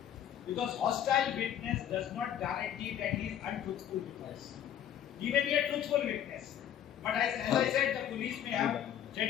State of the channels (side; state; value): right; quieter; 10.2 dB